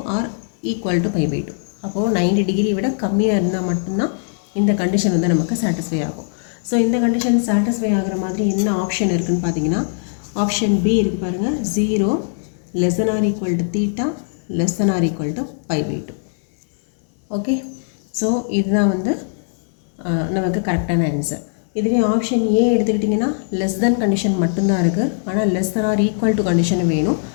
ஆர் ஈக்குவல் டு π/2. அப்போது 90 டிகிரி விட கம்மியாக இருந்தால் மட்டும்தான் இந்த கண்டிஷன் வந்து நமக்கு சாட்டிஸ்ஃபை ஆகும். ஸோ இந்த கண்டிஷன் சாட்டிஸ்ஃபை ஆகிற மாதிரி என்ன ஆப்ஷன் இருக்குதுன்னு பார்த்தீங்கன்னா, ஆப்ஷன் பி இருக்குது பாருங்கள், 0 less than or equal to theta less than or equal to π/2. Okay, so இதுதான் வந்து நமக்கு கரெக்டான ஆன்சர். இதுவே ஆப்ஷன் ஏ எடுத்துக்கிட்டிங்கன்னா லெஸ் தென் கண்டிஷன் மட்டும்தான் இருக்குது, ஆனால் less than or equal to condition வேணும்.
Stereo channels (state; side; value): silent; right; digital silence